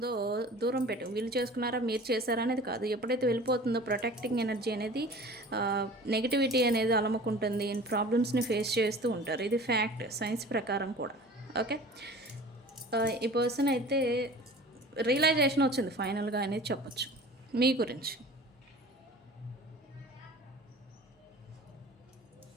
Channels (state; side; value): normal; both; correlation 0.42